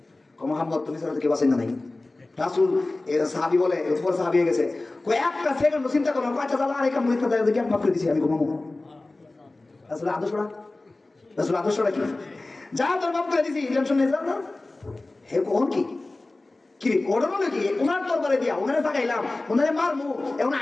কো মুহাম্মদ তুমি ছাড়া তো কেউ বাঁচাই না নাই রাসূল এর সাহাবী বলে উপর সাহাবী হয়ে গেছে কই একটা সেকেন্ড চিন্তা করো কয়টা জ্বালা আর একটা মুরিদটা দেয় দেখি মাফ করে দিছি আমি ঘুমাবো রাসূল আদর্শটা কি যা তোর মাফ করে দিছি টেনশন নেই যা হে কোন কি কি ওড়ানো নাকি ওনার তরবারি দিয়া ওনারে তাকাইলাম ওনারে মারমু এখন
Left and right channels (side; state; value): right; quieter; 3.0 dB